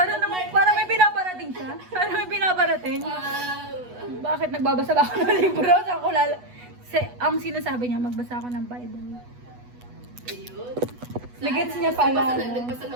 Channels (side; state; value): left; late; 8.2 ms